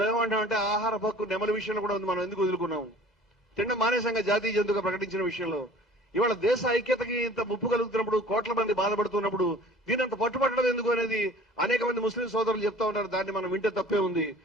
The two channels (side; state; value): both; normal; correlation 0.47